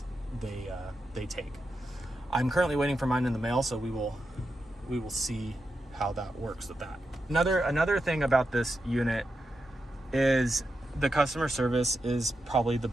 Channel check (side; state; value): both; normal; correlation 0.88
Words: they take. I'm currently waiting for mine in the mail, so we will we will see how that works with that. Another thing about this unit is the customer service is probably the